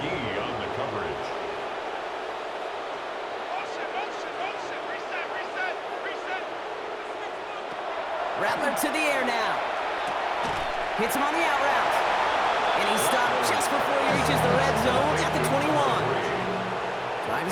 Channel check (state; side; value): identical; both; correlation 1.00